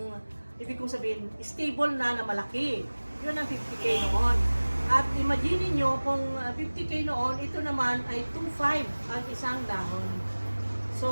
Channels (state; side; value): inverted; both; correlation -1.00